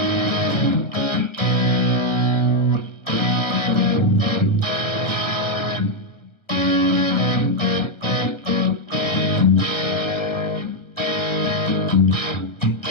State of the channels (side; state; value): right; late; 1.4 ms